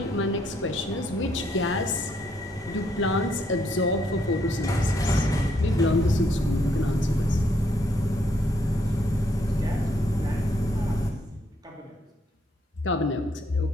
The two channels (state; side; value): normal; both; correlation 0.72